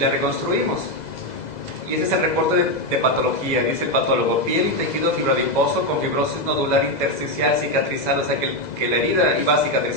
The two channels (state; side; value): late; right; 2.0 ms